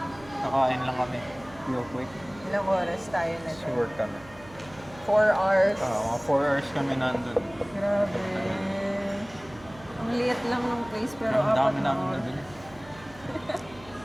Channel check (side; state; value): right; noise; hum, 21 dB below the sound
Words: Kakain lang kami. Real quick. Ilang oras tayo na So work kami. 4 hours. Mga 4 hours kami nandun. Grabe. Ang liit lang ng place pero Ang dami apat na namin oras. nabili.